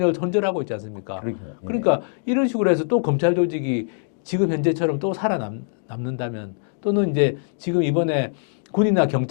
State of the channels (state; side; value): silent; right; digital silence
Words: 손절하고 있지 않습니까? 그러니까 이런 식으로 해서 또 검찰 조직이 지금 현재처럼 또 살아남는다면 또는 이제 지금 이번에 군이나